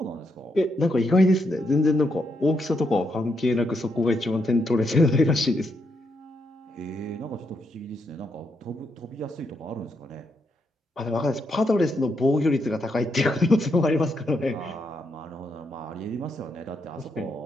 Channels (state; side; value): normal; both; correlation 0.79